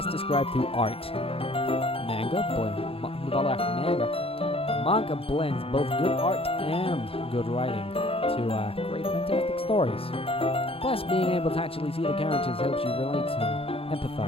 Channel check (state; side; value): late; right; 0.27 ms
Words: described through art. Manga blends both good art and good writing to create fantastic stories. Plus, being able to actually see the characters helps you relate and